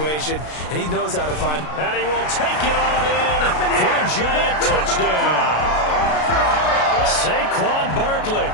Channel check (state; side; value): late; right; 33 ms